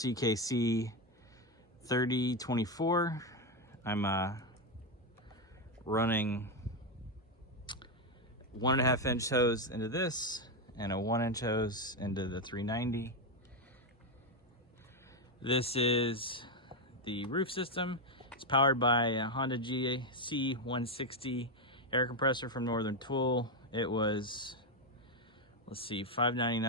3024. I'm running 1.5 inch hose into this and a 1 inch hose into the 390. This is the roof system. It's powered by a Honda GC 160 air compressor from Northern Tool. It was, let's see,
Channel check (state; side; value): normal; both; correlation 0.07